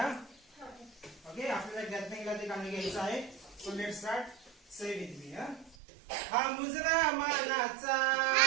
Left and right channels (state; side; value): drops out; left; at 5.8 s